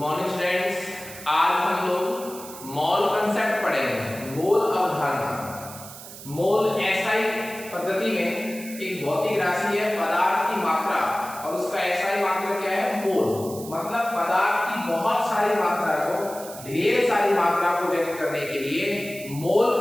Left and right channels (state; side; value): noise; right; hiss, 14 dB below the sound